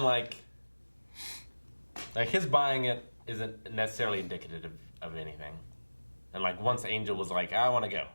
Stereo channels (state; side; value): inverted; both; correlation -1.00